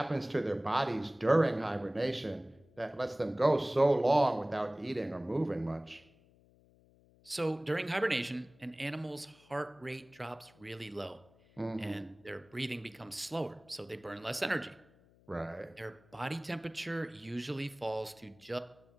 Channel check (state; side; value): noise; left; hum, 29 dB below the sound